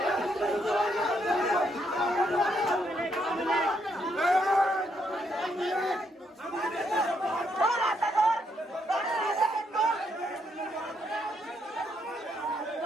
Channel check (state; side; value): normal; both; correlation 0.75